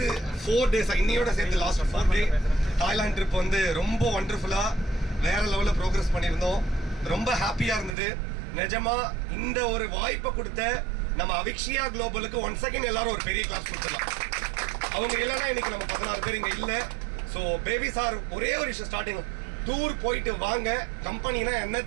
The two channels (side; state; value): left; drops out; at 8.0 s